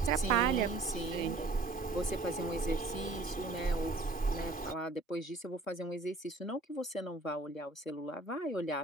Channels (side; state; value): left; quieter; 3.3 dB